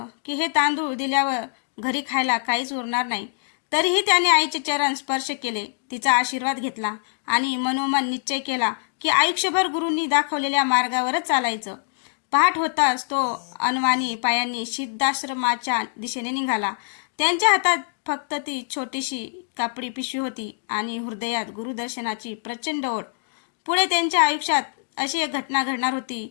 की हे तांदूळ दिल्यावर घरी खायला काहीच उरणार नाही. तरीही त्याने आईचे चरण स्पर्श केले, तिचा आशीर्वाद घेतला आणि मनोमन निश्चय केला की आयुष्यभर गुरूंनी दाखवलेल्या मार्गावरच चालायचं. पहाट होताच तो अनवाणी पायांनी सिद्धाश्रमाच्या दिशेने निघाला. त्यांच्या हातात फक्त ती छोटीशी कापडी पिशवी होती आणि हृदयात गुरुदर्शनाची प्रचंड ओढ. पुढे त्यांच्या आयुष्यात अशी एक घटना घडणार होती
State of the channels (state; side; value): silent; right; 63 dB below the other